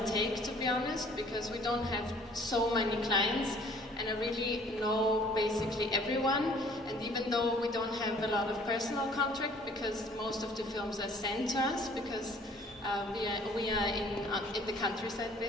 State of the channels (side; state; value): both; normal; correlation 0.55